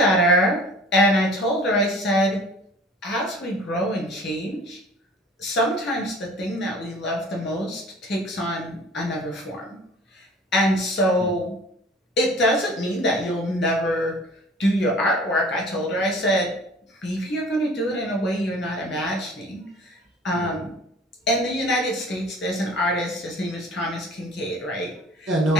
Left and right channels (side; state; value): both; normal; correlation 0.47